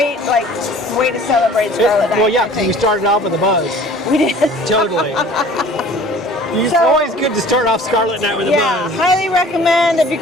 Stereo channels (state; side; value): normal; both; correlation 0.48